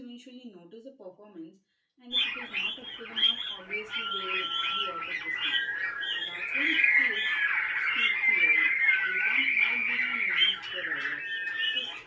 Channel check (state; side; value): identical; both; correlation 1.00